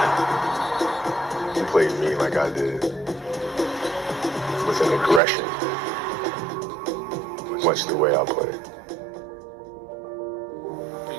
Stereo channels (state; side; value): drops out; left; at 5.2 s